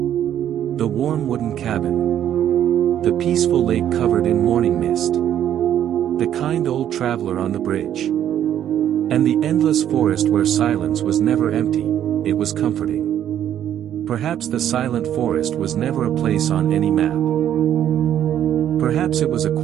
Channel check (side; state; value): left; quieter; 10.6 dB